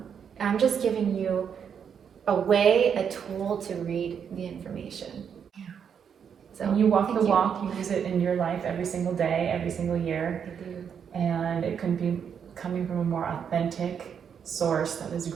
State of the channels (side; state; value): left; quieter; 7.5 dB